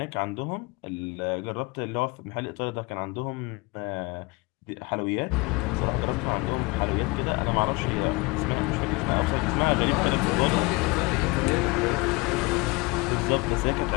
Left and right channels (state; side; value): quieter; right; 25.7 dB